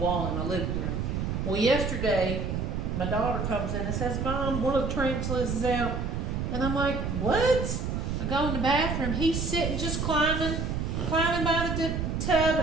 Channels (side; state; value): right; noise; rumble, 1 dB below the sound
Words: in my living room. Well, yesterday my daughter comes in and says, "Mom, one of the tarantulas is out," and I'm like, "What?" I go in the bathroom. He's sitting just climbing by the tub,